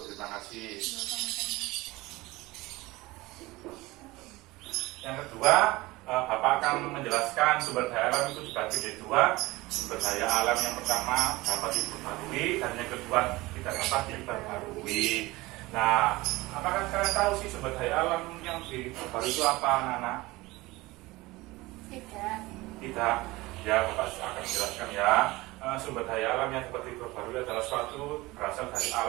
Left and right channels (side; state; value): left; quieter; 20.6 dB